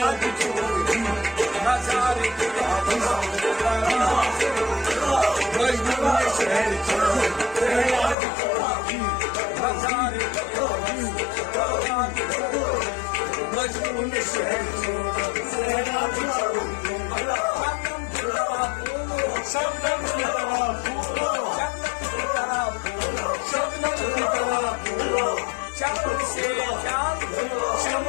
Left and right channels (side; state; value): right; drops out; at 8.2 s